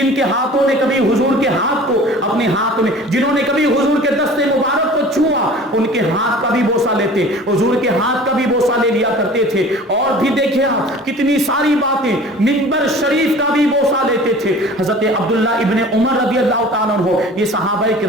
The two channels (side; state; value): both; normal; correlation 0.44